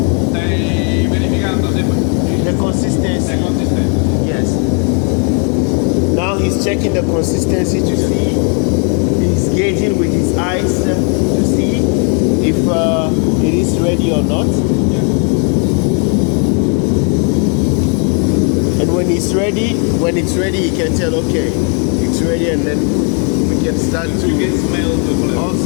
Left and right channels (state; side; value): quieter; right; 39.8 dB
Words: Stai verificando the consistency. Yes. Now he's checking the consistency to see. He's gauging with his eyes to see if it is ready or not. And when it's ready, he can tell, okay, it's ready, and then we can start to. You can smell the flavor.